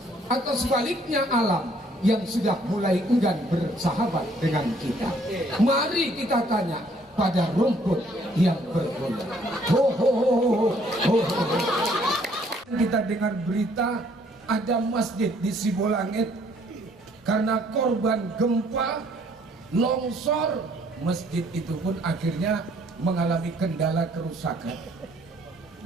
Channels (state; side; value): normal; both; correlation 0.63